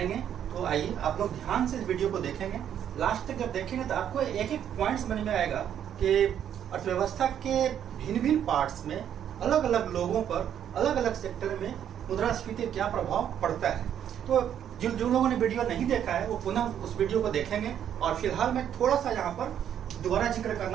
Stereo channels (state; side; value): quieter; left; 9.6 dB